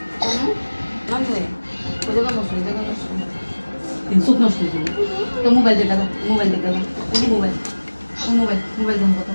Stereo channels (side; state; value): both; inverted; correlation -1.00